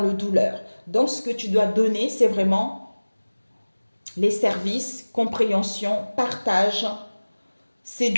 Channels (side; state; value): both; inverted; correlation -1.00